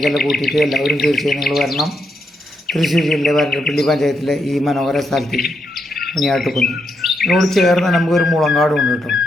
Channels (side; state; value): both; normal; correlation 0.80